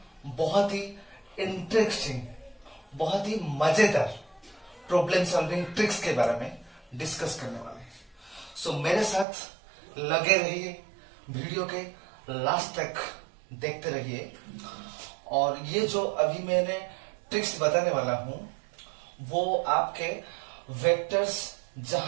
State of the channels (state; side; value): drops out; left; at 9.2 s